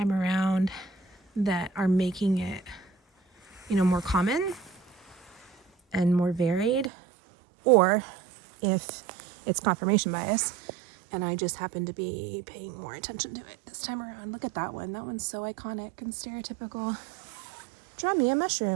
around that are making it, more common and more varied, or if it's confirmation bias and I just happen to be paying more attention to it this time around. Look at that one. That one's so iconic and stereotypical. Draw me a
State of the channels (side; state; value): left; drops out; at 6.9 s